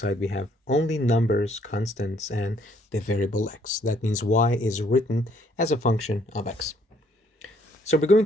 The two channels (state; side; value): normal; both; correlation 0.65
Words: we have only numbers, constants, and the variable x. That means y is written as a function of x. So we're going